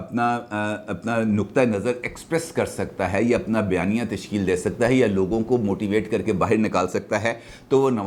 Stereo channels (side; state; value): both; identical; correlation 1.00